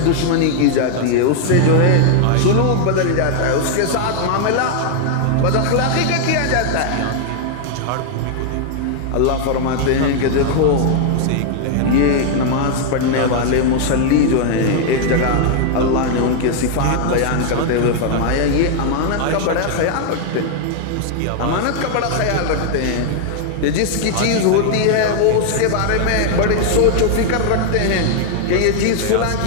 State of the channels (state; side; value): different; both; correlation 0.00